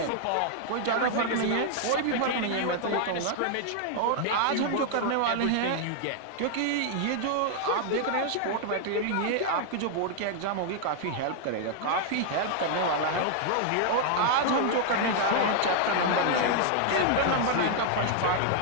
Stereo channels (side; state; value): both; different; correlation 0.00